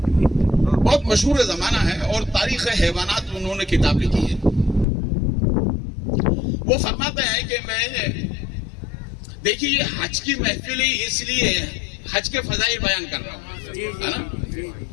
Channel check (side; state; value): right; drops out; at 4.9 s